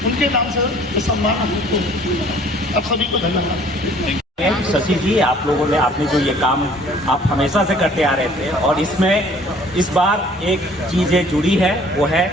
उनके नाम से ये सम्मान हमको मिला। आप सभी को धन्यवाद। शशि जी, आप लोगों ने आपने जो ये काम आप हमेशा से करते आ रहे थे, और इसमें इस बार एक चीज़ें जुड़ी है, वो है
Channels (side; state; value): both; normal; correlation 0.54